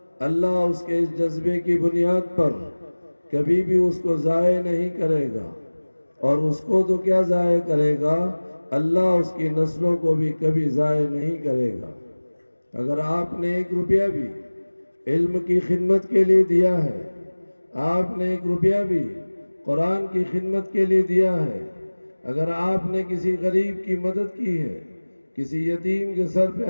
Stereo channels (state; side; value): inverted; both; correlation -1.00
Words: اللہ اس کے اس جذبے کی بنیاد پر کبھی بھی اس کو ضائع نہیں کرے گا. اور اس کو تو کیا ضائع کرے گا، اللہ اس کی نسلوں کو بھی کبھی ضائع نہیں کرے گا. اگر آپ نے 1 روپیہ بھی علم کی خدمت کے لیے دیا ہے، آپ نے 1 روپیہ بھی قرآن کی خدمت کے لیے دیا ہے، اگر آپ نے کسی غریب کی مدد کی ہے، کسی یتیم کے سر پہ